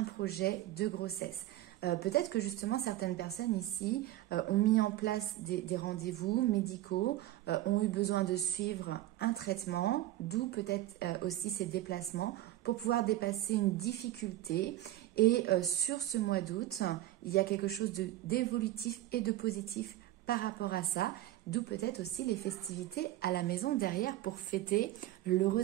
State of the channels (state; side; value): quieter; left; 14.7 dB